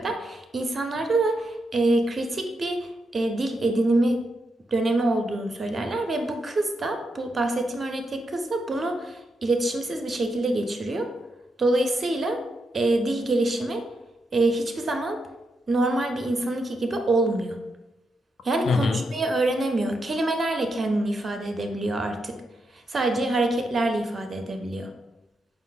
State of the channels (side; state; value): both; normal; correlation 0.83